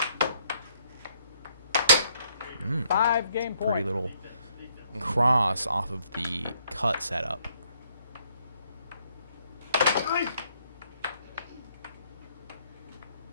Mm. 5-game point. Pretty little cross off of the cut setup.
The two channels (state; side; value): inverted; both; correlation -0.69